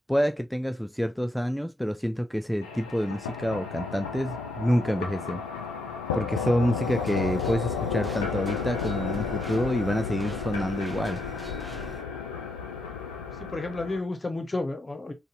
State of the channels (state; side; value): normal; both; correlation 0.79